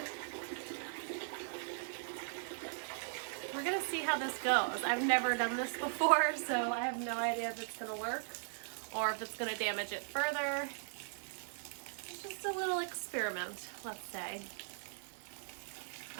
We're gonna see how this goes. I've never done this before, so I have no idea if it's gonna work or if it's gonna damage it further. It's just a little experiment, let's say.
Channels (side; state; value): left; silent; 52 dB below the other